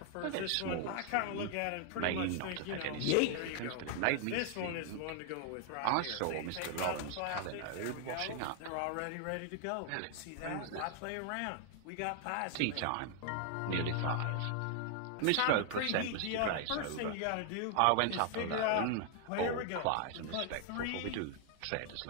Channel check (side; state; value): both; different; correlation 0.00